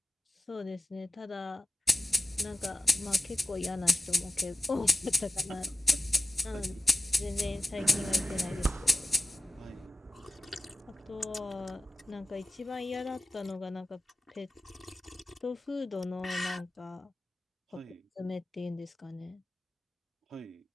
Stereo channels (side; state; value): both; normal; correlation 0.93